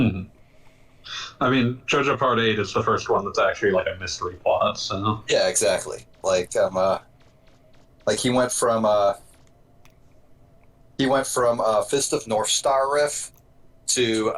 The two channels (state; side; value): identical; both; correlation 1.00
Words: I mean, JoJo Part 8 is the first one that's actually like a mystery plot, so. Yeah, exactly. Like he went from Fist of North Star riff to